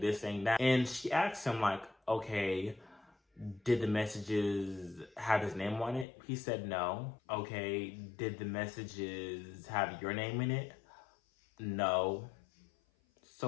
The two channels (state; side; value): drops out; right; at 6.1 s